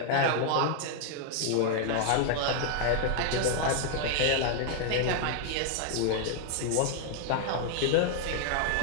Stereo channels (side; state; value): both; different; correlation 0.00